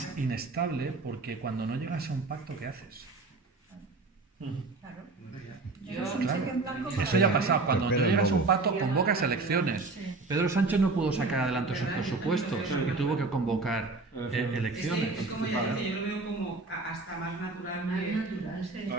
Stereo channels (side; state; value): left; quieter; 3.6 dB